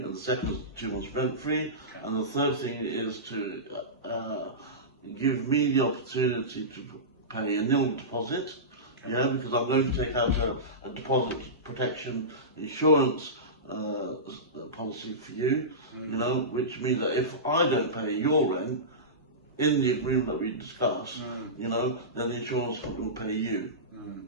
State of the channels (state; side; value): normal; both; correlation -0.19